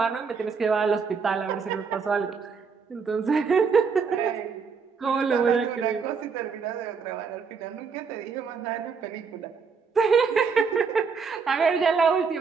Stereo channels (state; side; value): quieter; left; 5.5 dB